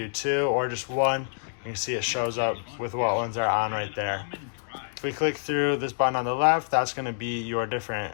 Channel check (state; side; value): silent; right; digital silence